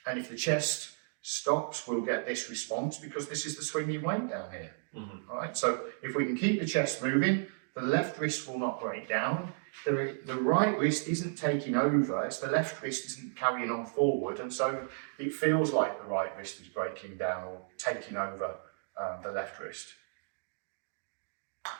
And if the chest stops, we'll get this response because this is the swinging weight down here. All right. So if we can keep the chest moving, the left wrist will not break down. The right wrist isn't taking over, it's the left wrist isn't carrying on forward, and so it feels like the right wrist is breaking down or taking over the left wrist.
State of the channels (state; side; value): silent; left; digital silence